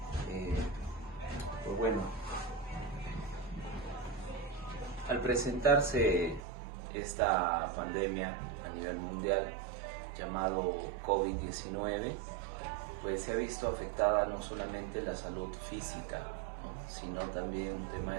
Eh, pues bueno, al presentarse esta pandemia a nivel mundial llamado COVID-19, pues se ha visto afectada no solamente la salud física, ¿no?, sino también un tema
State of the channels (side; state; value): left; drops out; at 6.4 s